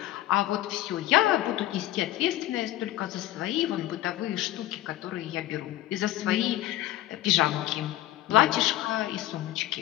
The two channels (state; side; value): quieter; right; 14.7 dB